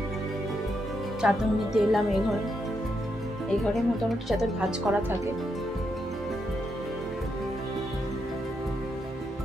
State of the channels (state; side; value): normal; both; correlation 0.81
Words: চাদর নিতে এলাম এই ঘরে মোটামুটি চাদর ভাঁজ করা থাকে।